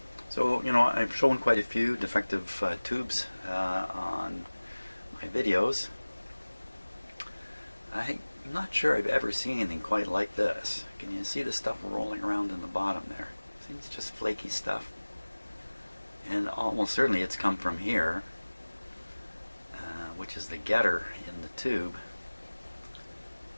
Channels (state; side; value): inverted; both; correlation -1.00